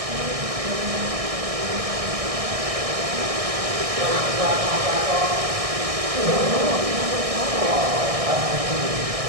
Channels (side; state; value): left; late; 1.6 ms